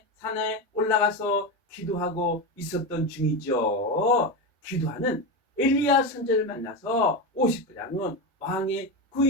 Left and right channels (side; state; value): both; normal; correlation 0.16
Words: 산에 올라가서 기도하고 있었던 중이죠. 기도하는 엘리야 선지자를 만나서 50부장은 왕의